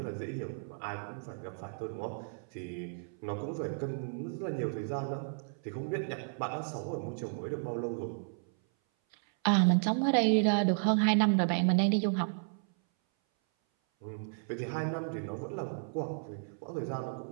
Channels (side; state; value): left; silent; 56 dB below the other